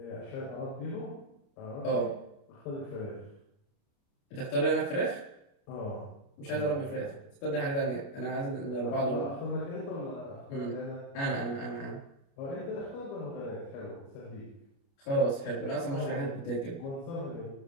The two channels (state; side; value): late; right; 29 ms